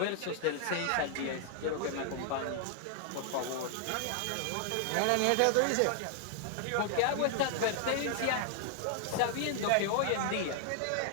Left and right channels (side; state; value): both; different; correlation 0.00